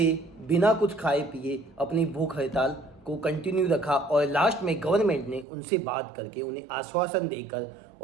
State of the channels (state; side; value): drops out; left; at 5.5 s